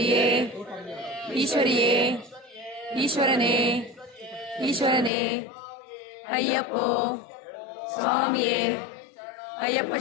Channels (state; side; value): drops out; right; at 5.1 s